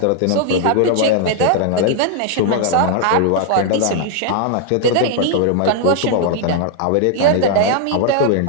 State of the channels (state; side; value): different; both; correlation 0.00